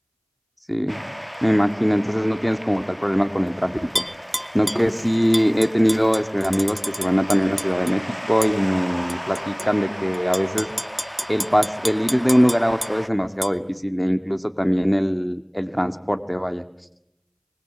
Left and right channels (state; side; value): identical; both; correlation 1.00